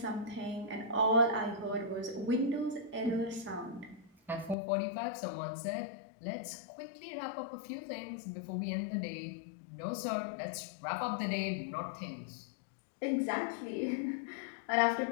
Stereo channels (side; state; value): right; drops out; at 4.5 s